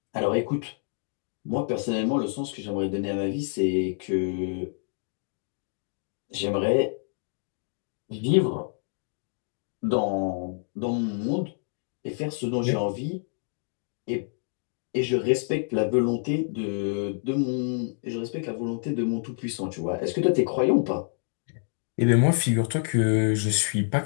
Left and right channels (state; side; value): silent; right; digital silence